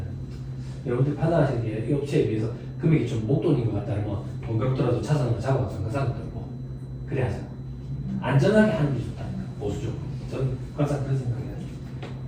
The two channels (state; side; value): identical; both; correlation 1.00